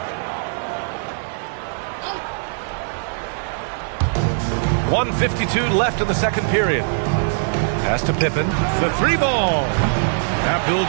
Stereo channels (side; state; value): left; silent; 65 dB below the other